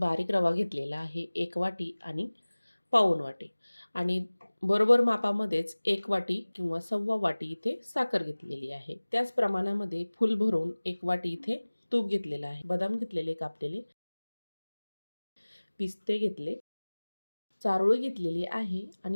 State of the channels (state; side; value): inverted; both; correlation -1.00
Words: रवा घेतलेला आहे 1 वाटी आणि पाऊण वाटी, आणि बरोबर मापामध्येच 1 वाटी किंवा 1.25 वाटी इथे साखर घेतलेली आहे. त्याच प्रमाणामध्ये फुल भरून 1 वाटी इथे तूप घेतलेलं आहे. बदाम घेतलेले कापलेले, पिस्ते घेतले, चारोळी घेतलेली आहे